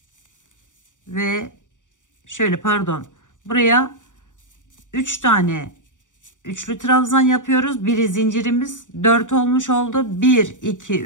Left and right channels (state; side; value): late; right; 0.86 ms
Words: ve şöyle, pardon, buraya 3 tane üçlü trabzan yapıyoruz. Biri zincirimiz 4 olmuş oldu. 1 2